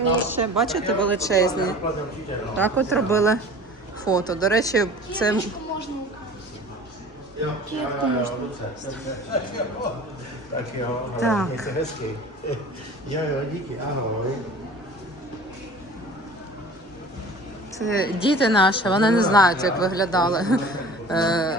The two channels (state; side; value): normal; both; correlation 0.42